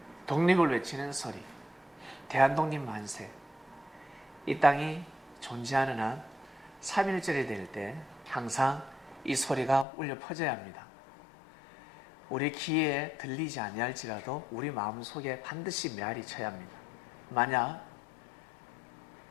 독립을 외치는 소리, 대한독립 만세. 이 땅이 존재하는 한 3.1절이 될 때 항상 이 소리가 울려 퍼져야 합니다. 우리 귀에 들리지 아니할지라도 우리 마음속에 반드시 메아리 쳐야 합니다. 만약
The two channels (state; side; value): drops out; right; at 9.9 s